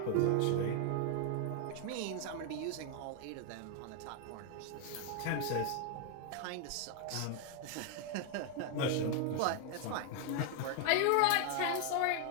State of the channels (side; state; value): both; different; correlation 0.00